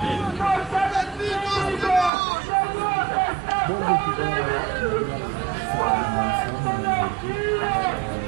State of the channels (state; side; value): drops out; left; at 2.1 s